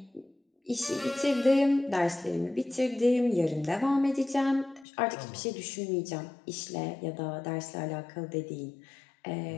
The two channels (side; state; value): right; drops out; at 4.9 s